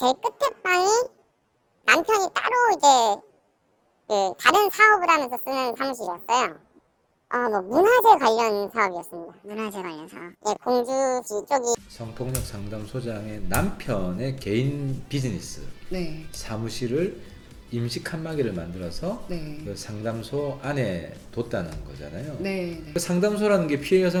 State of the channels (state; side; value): identical; both; correlation 1.00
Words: 끝에 방이 남편이 따로 이제 그 다른 사업을 하면서 쓰는 사무실이었어요. 뭐 문화재 관련 사업이었습니다. 문화재 관련 사업. 네, 공주시 쪽이 성폭력 상담소장의 남편의 개인 비즈니스 네. 사무실을 임시 칸막이를 만들어서 네. 그 상담소 안에 뒀다는 거잖아요. 네. 네. 그 상담소라는 게 피해